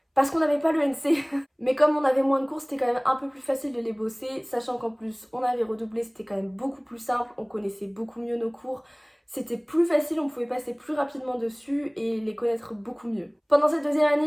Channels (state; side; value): identical; both; correlation 1.00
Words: parce qu'on n'avait pas le NC. Mais comme on avait moins de cours, c'était quand même un peu plus facile de les bosser, sachant qu'en plus on avait redoublé, c'était quand même beaucoup plus simple, on connaissait beaucoup mieux nos cours. C'était plus facile, on pouvait passer plus rapidement dessus et les connaître beaucoup mieux. Pendant cette deuxième